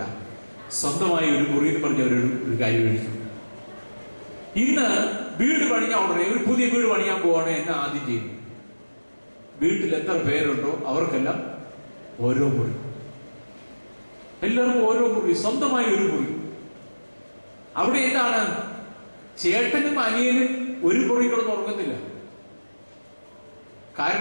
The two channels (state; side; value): inverted; both; correlation -1.00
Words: സ്വന്തമായ ഒരു മുറി എന്ന് പറഞ്ഞ ഒരു കാര്യം എഴുതി. ഇന്ന് വീട് പണിയാൻ ഉടനെ ഒരു പുതിയ വീട് പണിയാൻ പോവാണ് എന്നെ ആദ്യം ചെയ്യുന്നത്. വീട്ടിൽ എത്ര പേരുണ്ടോ അവർക്കെല്ലാം ഓരോ മുറി, എല്ലാവർക്കും ഓരോ മുറി, സ്വന്തമായി ഒരു മുറി. അവിടെ എന്താണ്, ചേട്ടനും അനിയനും ഒരു മുറി കിടന്ന് ഉറങ്ങുന്നില്ല.